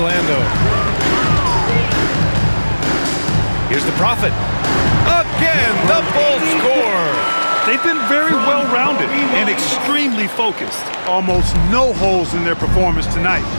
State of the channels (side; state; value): both; inverted; correlation -1.00